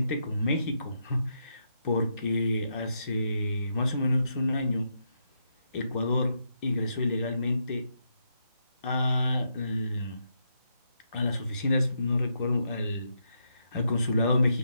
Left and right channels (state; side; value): inverted; both; correlation -0.81